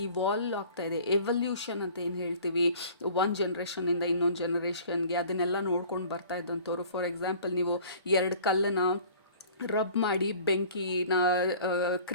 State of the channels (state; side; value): inverted; both; correlation -0.48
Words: ಇವಾಲ್ವ್ ಆಗ್ತಾ ಇದೆ, ಎವಲ್ಯೂಷನ್ ಅಂತ ಏನು ಹೇಳ್ತೀವಿ, ಒಂದು ಜನ್ರೇಷನಿಂದ ಇನ್ನೊಂದು ಜನ್ರೇಷನ್ಗೆ, ಅದನ್ನೆಲ್ಲ ನೋಡ್ಕೊಂಡು ಬರ್ತಾ ಇದ್ದಂಥವ್ರು. ಫಾರ್ ಎಕ್ಸಾಂಪಲ್, ನೀವು ಎರಡು ಕಲ್ಲನ್ನು ರಬ್ ಮಾಡಿ ಬೆಂಕಿನ